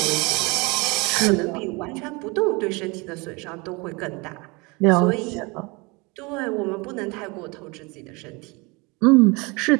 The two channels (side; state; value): left; quieter; 27.0 dB